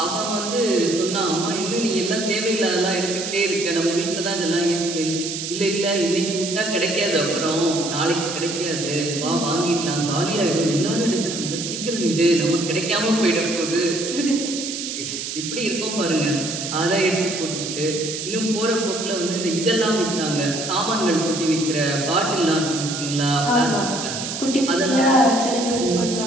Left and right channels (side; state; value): right; noise; hiss, 5 dB below the sound